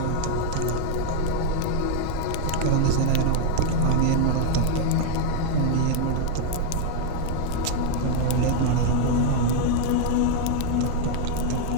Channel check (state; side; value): different; both; correlation 0.00